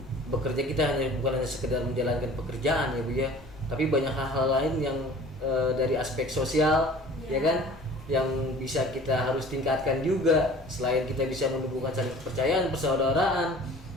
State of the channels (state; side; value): normal; both; correlation 0.46